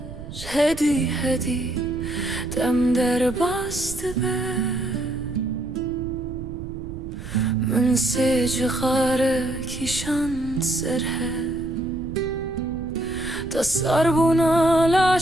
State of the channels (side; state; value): right; noise; rumble, 11 dB below the sound